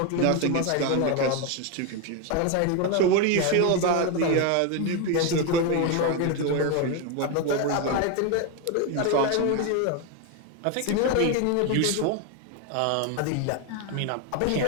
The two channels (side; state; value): both; different; correlation 0.01